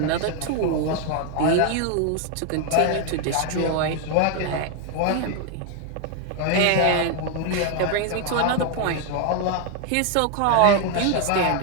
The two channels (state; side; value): different; both; correlation 0.01